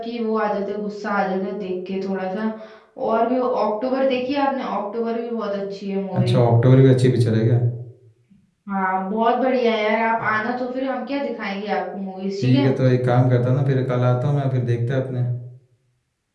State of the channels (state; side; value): identical; both; correlation 1.00